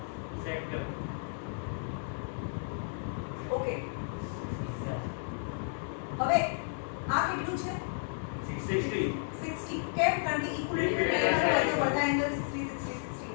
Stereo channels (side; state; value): right; silent; digital silence